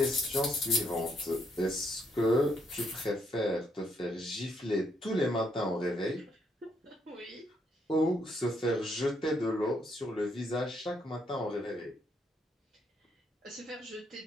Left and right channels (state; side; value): normal; both; correlation 0.74